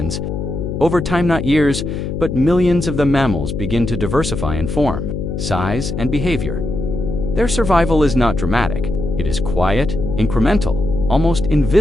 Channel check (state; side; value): noise; left; hum, 4 dB below the sound